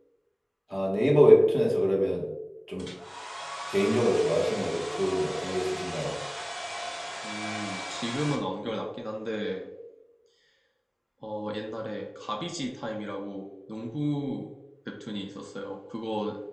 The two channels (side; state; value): both; identical; correlation 1.00